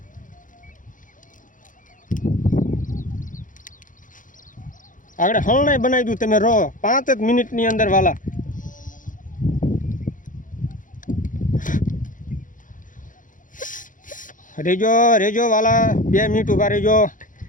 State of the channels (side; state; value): right; late; 0.38 ms